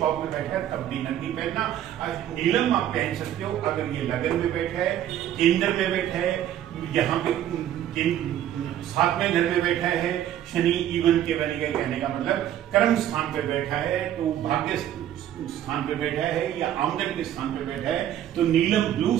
में बैठा है तब भी नग नहीं पहनना। नीलम आप पहन सकते हो अगर ये लगन में बैठा है, केंद्र में बैठा है, यहाँ पे 7वें घर में बैठा है। शनि इवन के बने गए, कहने का मतलब कर्म स्थान पे बैठा है, तो भाग्य स्थान पे बैठा है या आमदन के स्थान पे बैठा है, तो नीलम ब्लू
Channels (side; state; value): left; quieter; 11.3 dB